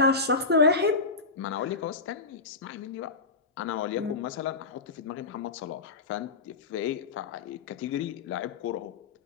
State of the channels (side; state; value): right; quieter; 4.1 dB